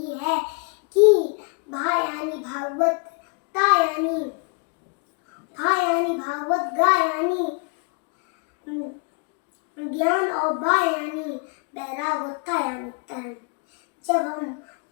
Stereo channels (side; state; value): right; quieter; 35.9 dB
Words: है कि भा यानी भागवत, ता यानी भा यानी भागवत, गा यानी ज्ञान और बा यानी वैराग और ता यानी तरण। जब हम